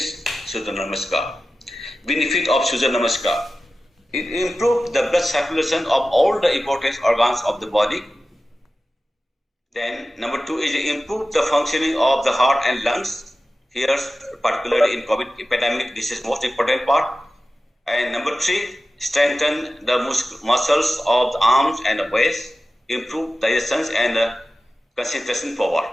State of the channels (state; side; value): normal; both; correlation 0.94